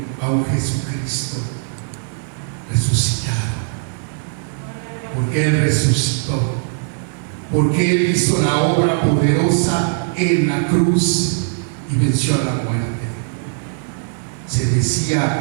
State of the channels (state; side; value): silent; left; digital silence